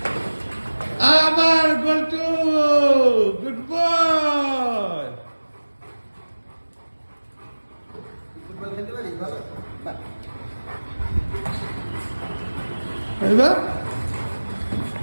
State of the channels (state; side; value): inverted; both; correlation -1.00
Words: আবার গোলটু, গুড বয়। এবার